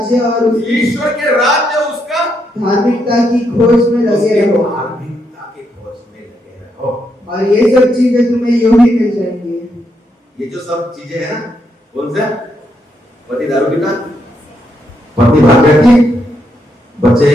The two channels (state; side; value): normal; both; correlation 0.79